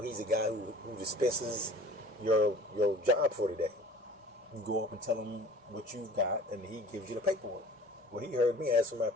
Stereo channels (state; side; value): normal; both; correlation 0.45